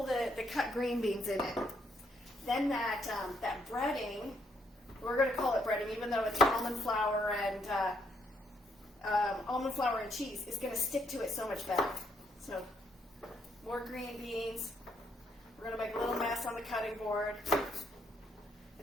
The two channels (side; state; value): both; normal; correlation 0.73